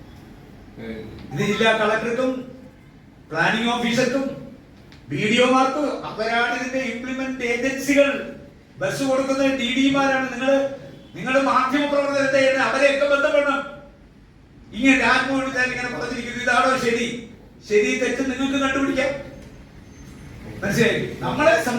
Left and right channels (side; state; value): both; identical; correlation 1.00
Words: ഇത് ജില്ലാ കളക്ടർക്കും പ്ലാനിംഗ് ഓഫീസർക്കും BDO-മാർക്കും അവരാണ് ഇതിന്റെ ഇംപ്ലിമെന്റ് ഏജൻസികൾ. ബസ് കൊടുക്കുന്ന DD-മാരാണ്. നിങ്ങൾ മാധ്യമ പ്രവർത്തനത്തെ അവരെയൊക്കെ ബന്ധപ്പെടണം. ഇങ്ങനെ രാജ്മോഹൻ ഉണ്ണിത്താൻ ഇങ്ങനെ പറഞ്ഞിരിക്കുന്നു. ഇതാണോ ശരി തെറ്റ് നിങ്ങൾക്ക് കണ്ടുപിടിക്കാം. മനസ്സിലായി? നമ്മളെ